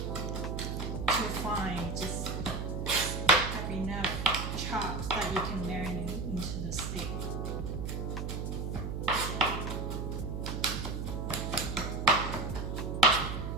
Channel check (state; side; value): noise; right; hum, 3 dB below the sound